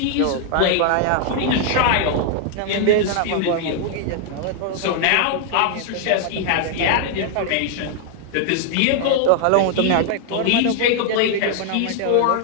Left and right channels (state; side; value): different; both; correlation 0.00